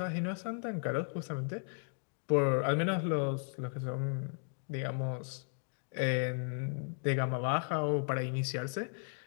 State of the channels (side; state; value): right; silent; 54 dB below the other